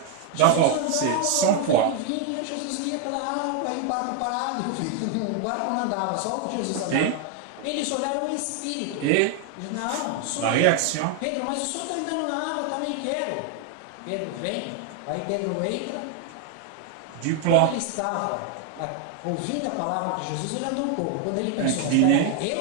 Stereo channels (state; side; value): different; both; correlation 0.00